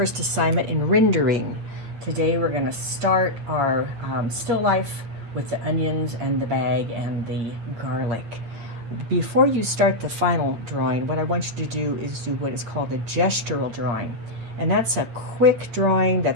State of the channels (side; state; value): left; late; 8.9 ms